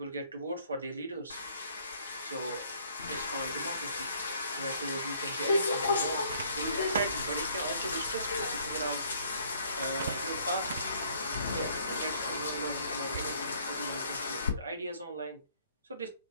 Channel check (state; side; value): inverted; both; correlation -0.62